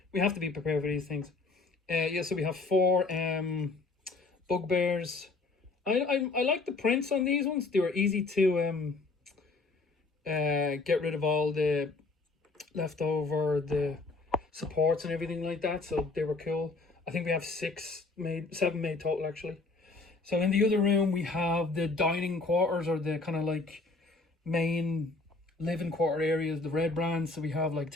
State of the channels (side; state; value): right; quieter; 3.6 dB